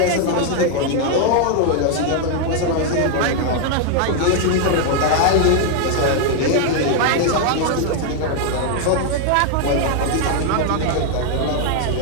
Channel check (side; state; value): both; different; correlation 0.00